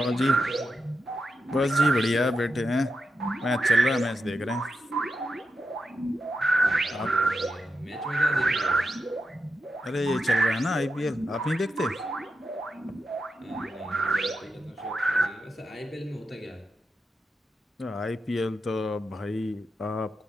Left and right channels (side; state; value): both; normal; correlation 0.86